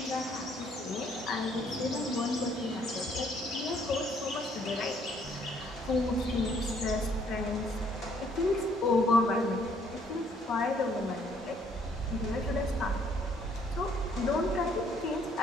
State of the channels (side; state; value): both; normal; correlation 0.65